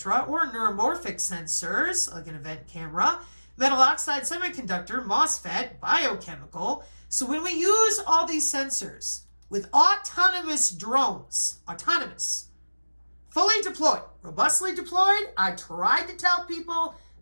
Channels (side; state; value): both; inverted; correlation -1.00